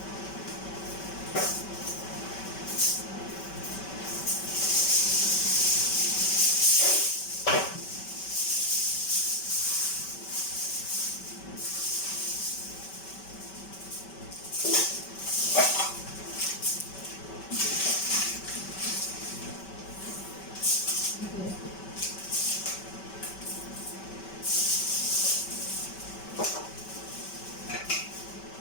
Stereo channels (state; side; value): late; right; 5.2 ms